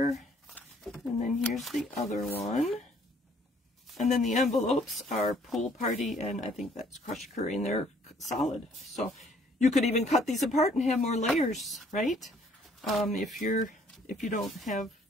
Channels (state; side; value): normal; both; correlation 0.62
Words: And then here's the other one. And then the envelopes are Pool Party, and I think that's Crushed Curry, and they're solid. So you could even cut these apart and have more layers, right? If you don't have